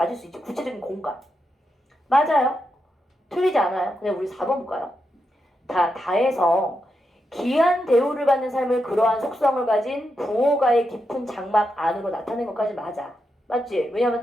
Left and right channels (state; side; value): normal; both; correlation 0.85